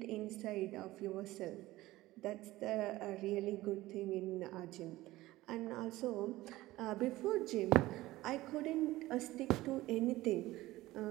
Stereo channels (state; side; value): quieter; left; 17.6 dB